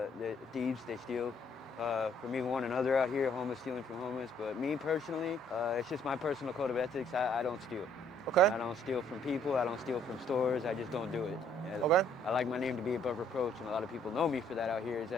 thieves. They steal from even one another out here, homeless stealing from homeless. But me personally, it's just my personal code of ethics. I don't steal. Okay. I don't steal from people. I don't steal from stores. I just don't do it. Okay. I like my name to be above reproach, and a lot of people know me for that out here, is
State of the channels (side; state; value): both; normal; correlation 0.64